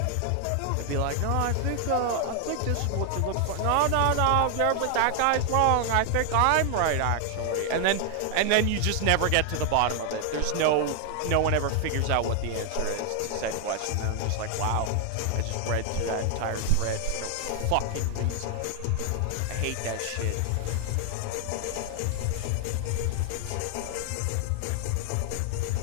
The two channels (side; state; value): both; different; correlation 0.00